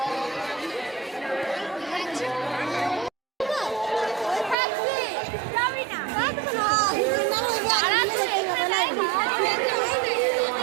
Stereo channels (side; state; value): left; drops out; at 4.5 s